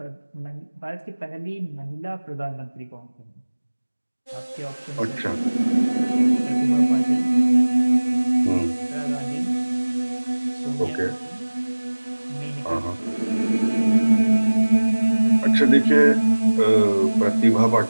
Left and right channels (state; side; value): inverted; both; correlation -1.00